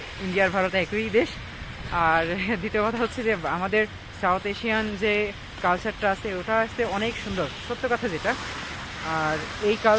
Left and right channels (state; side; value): identical; both; correlation 1.00